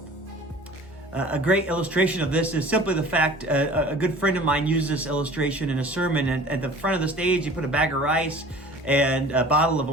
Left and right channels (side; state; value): both; normal; correlation 0.45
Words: A great illustration of this is simply the fact a good friend of mine used this illustration in a sermon, and at the front of the stage he put a bag of rice and a bottle of